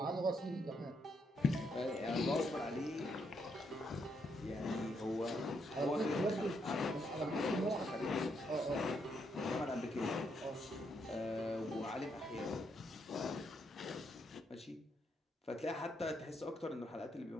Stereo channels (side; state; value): both; normal; correlation 0.77